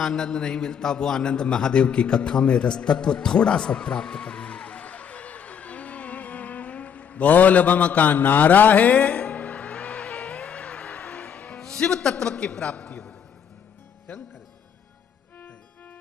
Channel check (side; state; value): right; quieter; 7.7 dB